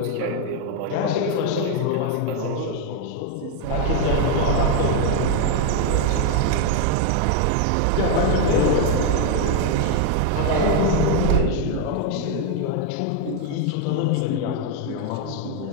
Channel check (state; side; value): different; both; correlation 0.01